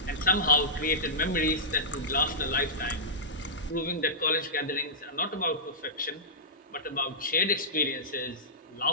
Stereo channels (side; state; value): both; normal; correlation -0.16